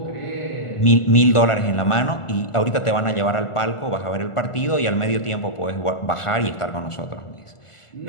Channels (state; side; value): late; right; 1.5 ms